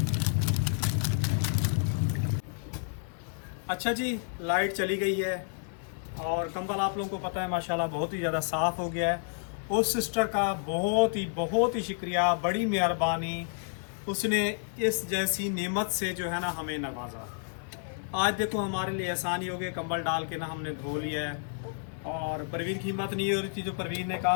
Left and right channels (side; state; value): right; silent; 58 dB below the other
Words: अच्छा जी, लाइट चली गई है और कंबल आप लोगों को पता है माशाल्लाह बहुत ही ज़्यादा साफ़ हो गया है। उस सिस्टर का बहुत ही शुक्रिया, बड़ी मेहरबानी, उसने इस जैसी नेमत से जो है ना हमें नवाजा। आज देखो हमारे लिए आसानी हो गई, कंबल डाल के ना हमने धो लिया है। और परवीन की हिम्मत नहीं हो रही थी, जो परवीन ने कहा